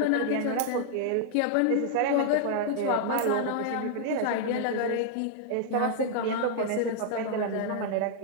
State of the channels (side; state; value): both; different; correlation -0.01